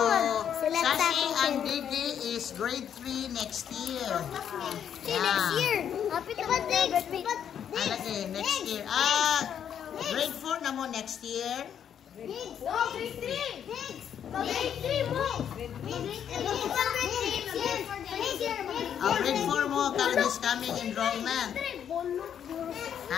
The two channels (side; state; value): right; quieter; 8.9 dB